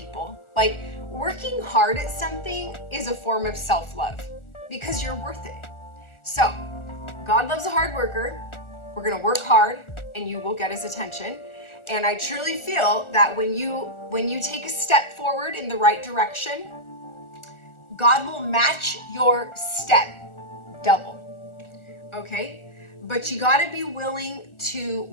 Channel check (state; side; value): late; right; 1.4 ms